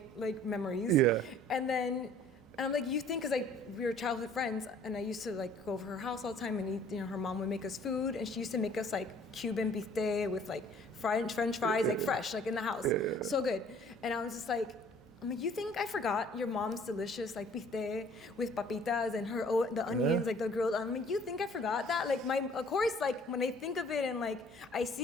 like memories. Yeah. And I'm like, you think, because we were childhood friends, and I used to like go over her house all the time and eat, her mom would make us food, and she used to make us like Cuban bistec with like French fries, like fresh, like in the house. So good. And I was just like, you think I forgot your mom's delicious like bistec with papitas and the onions, like the grilled. I'm like, you think I forgot that? Like of course, like when I think of it and like I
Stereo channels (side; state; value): both; normal; correlation 0.55